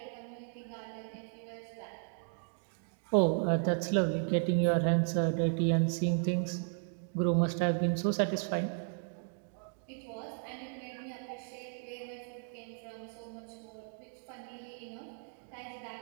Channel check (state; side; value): silent; left; 54 dB below the other